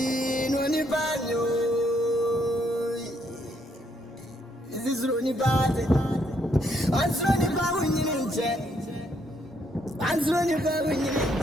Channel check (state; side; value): normal; both; correlation 0.73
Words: only banyo. This is Ronnie Bad. I'm running back when you're in jet. I'm running back when you're in